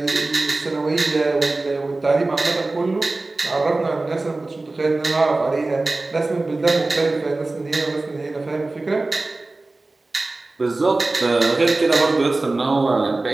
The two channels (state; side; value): quieter; left; 3.2 dB